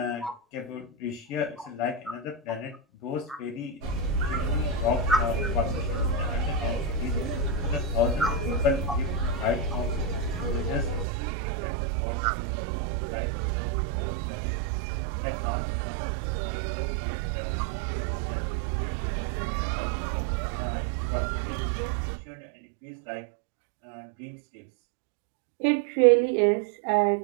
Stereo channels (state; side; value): drops out; left; at 11.1 s